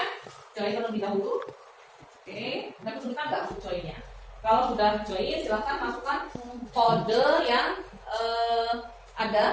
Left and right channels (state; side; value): identical; both; correlation 1.00